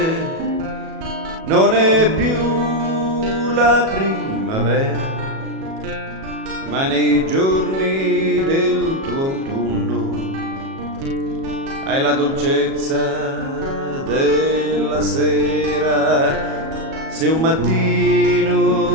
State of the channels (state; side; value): late; left; 37 ms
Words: non è più la primavera, ma nei giorni del tuo autunno hai la dolcezza della sera. Se un